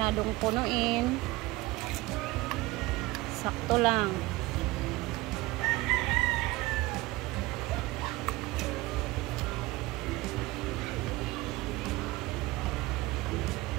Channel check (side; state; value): left; quieter; 20.2 dB